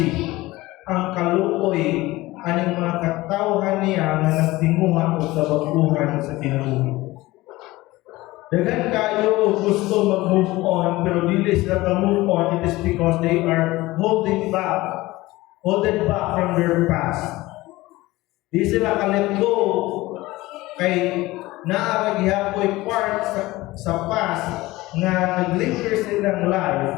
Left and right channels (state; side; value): quieter; right; 19.2 dB